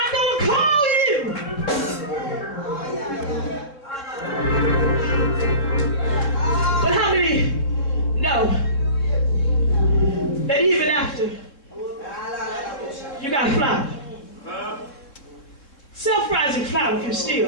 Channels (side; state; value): right; late; 3.6 ms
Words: going to call you. But how many know that even after you got flour, self-rising flour can